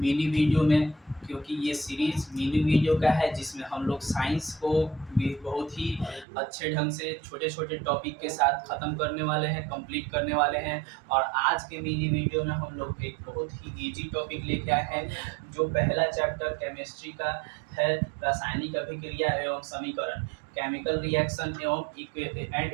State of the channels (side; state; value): left; drops out; at 6.2 s